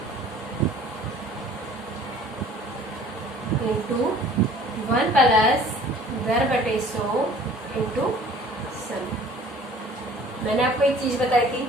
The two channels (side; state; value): both; normal; correlation 0.50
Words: इंटू 1 प्लस दर/100 इंटू समय। मैंने आपको एक चीज बताई थी,